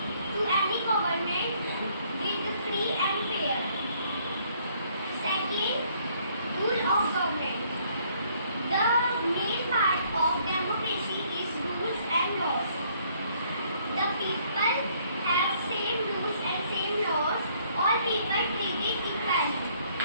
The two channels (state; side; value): inverted; both; correlation -0.65